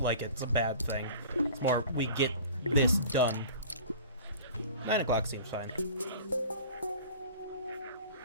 like it's a bad thing. It's more, we get this done. 9 o'clock seems fine.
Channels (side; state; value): both; inverted; correlation -0.43